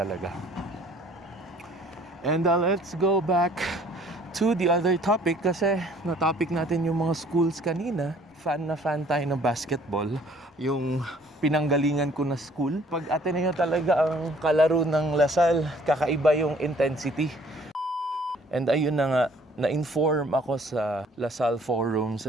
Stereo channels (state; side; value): normal; both; correlation 0.58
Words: And let's go back to the other topic kasi na-topic natin yung mga schools kanina. Fan na fan tayo ng basketball. Yung pinanggalingan ko na school. Pag Ateneo talaga ang kalaro ng Lasal, kakaiba yung intensity. And ayun na nga, na-inform ako sa Lasal